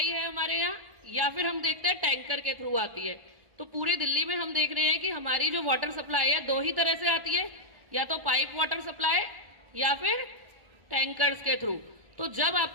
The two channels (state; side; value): late; left; 1.1 ms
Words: है हमारे यहाँ, या फिर हम देखते हैं टैंकर के थ्रू आती है। तो पूरे दिल्ली में हम देख रहे हैं कि हमारी जो वाटर सप्लाई है 2 ही तरह से आती है, या तो पाइप वाटर सप्लाई या फिर टैंकर्स के थ्रू। तो जब